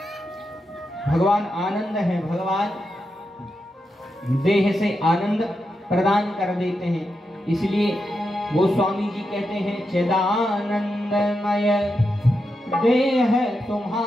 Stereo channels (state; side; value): normal; both; correlation 0.87